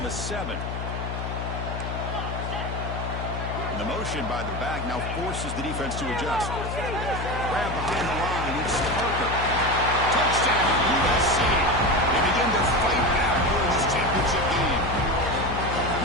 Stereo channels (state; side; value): noise; left; hum, 5 dB below the sound